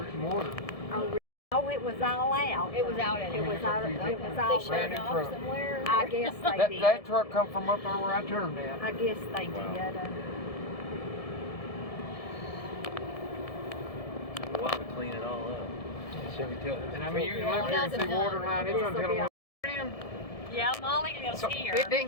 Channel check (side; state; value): right; late; 1.7 ms